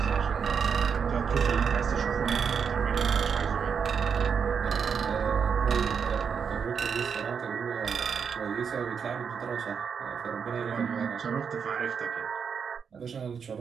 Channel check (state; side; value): quieter; left; 6.6 dB